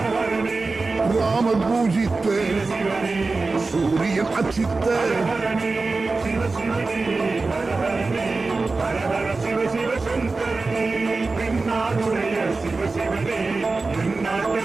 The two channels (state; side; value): quieter; left; 3.8 dB